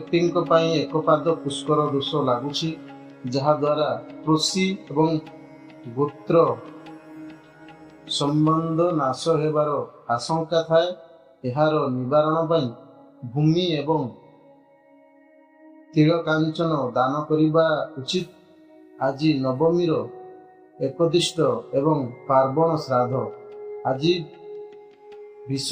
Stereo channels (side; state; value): both; identical; correlation 1.00